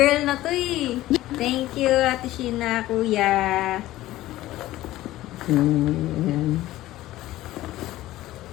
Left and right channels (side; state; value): right; quieter; 15.8 dB